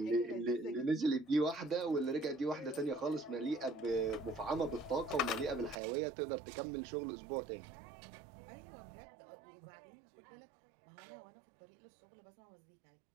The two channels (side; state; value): left; drops out; at 5.8 s